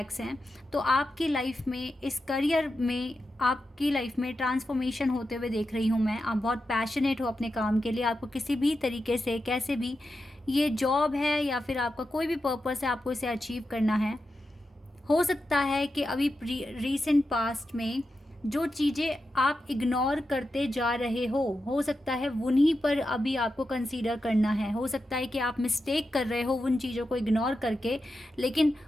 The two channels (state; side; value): normal; both; correlation 0.89